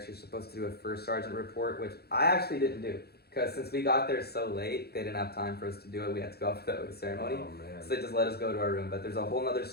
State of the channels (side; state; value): right; late; 0.46 ms